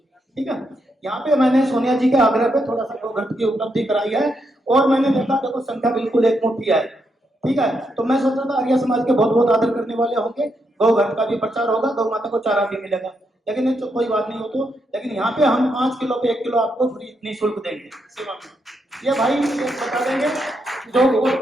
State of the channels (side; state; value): both; normal; correlation 0.80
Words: ठीक है, यहाँ पे मैंने सोनिया जी के आग्रह पे थोड़ा सा गोघृत की उपलब्धि कराई है, और मैंने देखा देखो संख्या बिल्कुल एक मुट्ठी है। ठीक है, तो मैं सोच रहा था आर्य समाज के बहुत बहुत आदर करने वाले होंगे, गोघृत का भी प्रचार होगा, गौ माता को चारा भी मिलेगा, लेकिन ये तो कोई बात नहीं हो तो। लेकिन यहाँ पे हम 5 किलो पे 1 किलो आपको फ्री निःशुल्क देंगे सेवा में। ये भाई ये बता देंगे जो